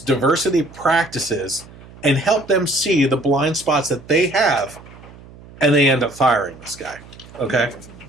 practices and help them see the blind spots that they have, and they end up firing this guy. Okay?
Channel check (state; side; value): noise; right; hum, 20 dB below the sound